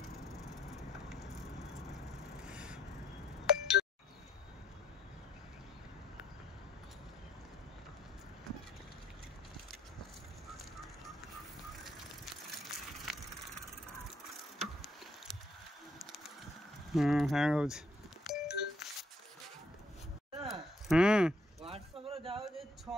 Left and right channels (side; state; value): both; normal; correlation 0.69